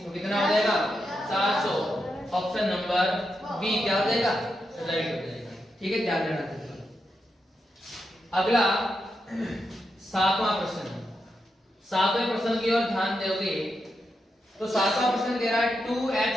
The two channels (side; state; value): both; normal; correlation 0.85